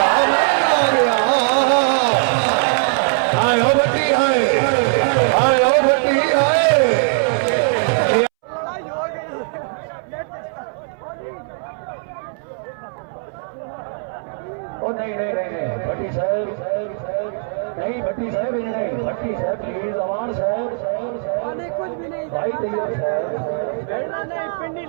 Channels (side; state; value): left; silent; 66 dB below the other